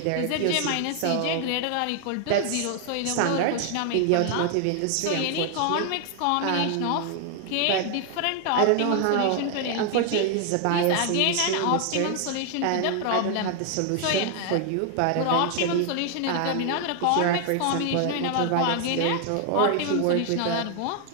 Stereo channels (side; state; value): both; different; correlation 0.00